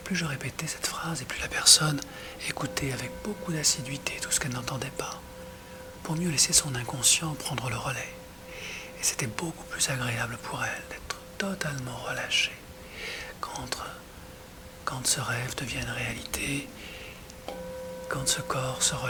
je répétais cette phrase, et plus la personne écoutait avec beaucoup d'assiduité tout ce qu'elle n'entendait pas, pour mieux laisser son inconscient prendre le relais. Et c'était beaucoup plus agréable pour elle d'être totalement relâchée quand ce rêve devient une réalité, quand ce corps se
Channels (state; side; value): identical; both; correlation 1.00